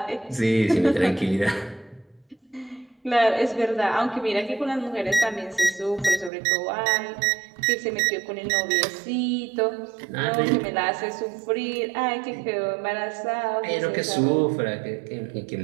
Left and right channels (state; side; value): drops out; left; at 6.3 s